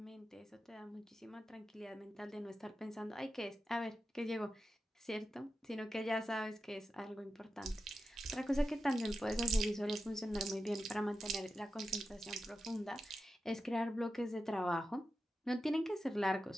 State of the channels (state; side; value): normal; both; correlation 0.91